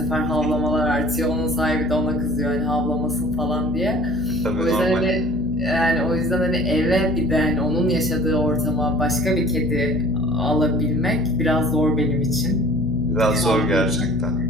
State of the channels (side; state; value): right; noise; hum, 8 dB below the sound